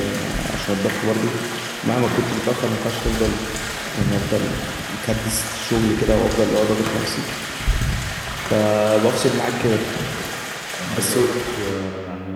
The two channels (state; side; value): identical; both; correlation 1.00